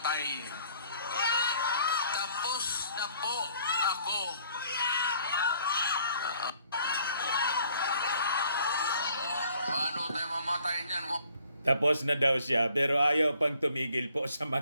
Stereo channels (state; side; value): inverted; both; correlation -0.60